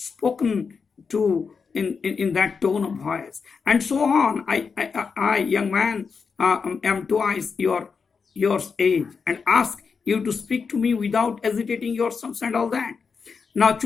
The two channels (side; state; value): right; quieter; 5.5 dB